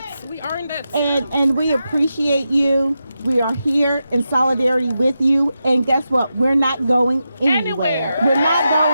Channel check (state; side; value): inverted; both; correlation -0.89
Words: earned it. And we appreciate you. We are here in solidarity with you. And guess what? We're not going anywhere. We're not